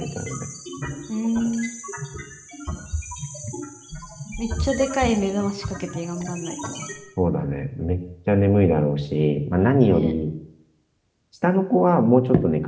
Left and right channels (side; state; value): both; identical; correlation 1.00